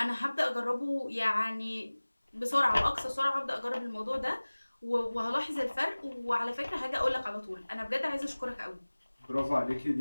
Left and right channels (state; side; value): inverted; both; correlation -1.00